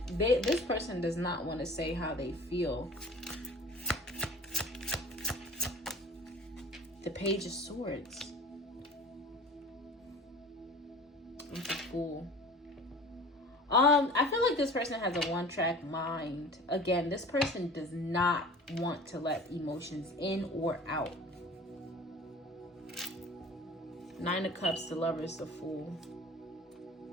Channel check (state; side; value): normal; both; correlation 0.42